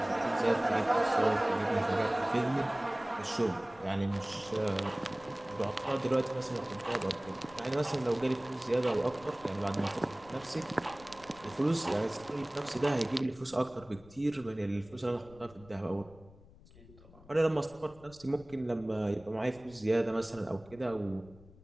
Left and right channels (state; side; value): noise; left; rumble, 22 dB below the sound